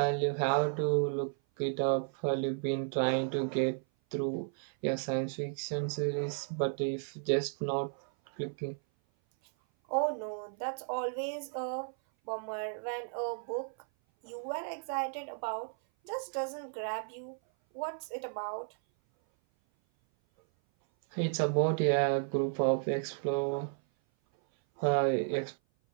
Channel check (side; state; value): left; silent; 55 dB below the other